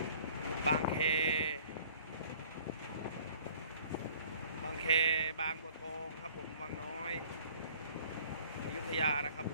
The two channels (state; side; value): inverted; both; correlation -0.54